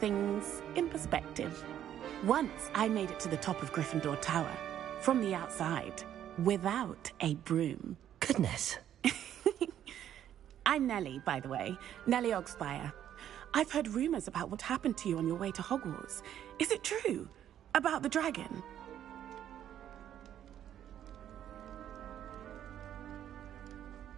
in perspective. Once I made it to the top of Gryffindor Tower, from the outside, without a broom. Goodness. I'm Nellie, by the way. Nellie Ogspire. I've heard rumors about what happened to you on your way to Hogwarts. Is it true? About the dragon?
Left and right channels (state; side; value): quieter; left; 10.7 dB